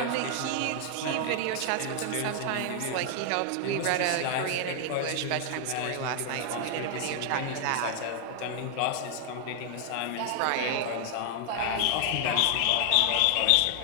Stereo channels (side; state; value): both; different; correlation 0.00